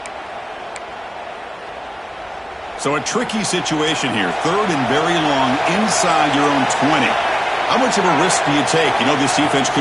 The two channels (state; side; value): identical; both; correlation 1.00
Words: So a tricky situation here. 3rd and very long inside your own 20. How much of a risk do you take? You know this defense